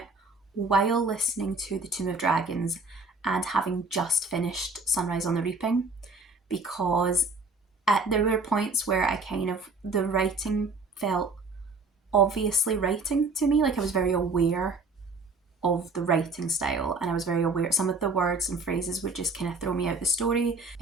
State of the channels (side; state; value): left; quieter; 3.5 dB